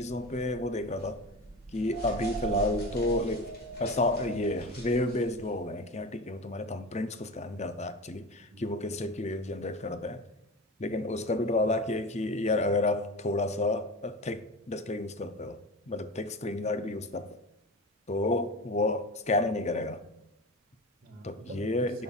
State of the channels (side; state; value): both; normal; correlation 0.29